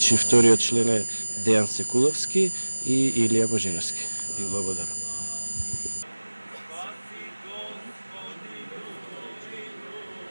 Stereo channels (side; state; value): both; inverted; correlation -1.00